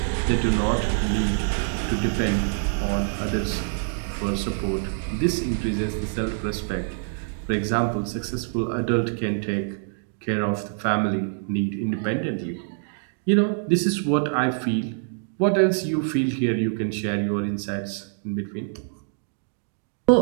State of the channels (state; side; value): silent; left; digital silence